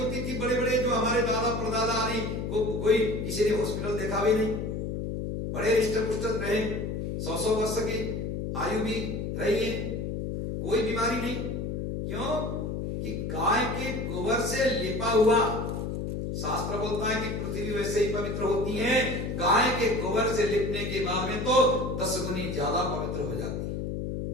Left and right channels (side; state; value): left; noise; hum, 3 dB below the sound